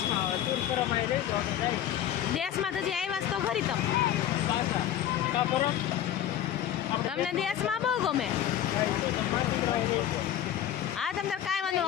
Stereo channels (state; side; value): quieter; right; 11.0 dB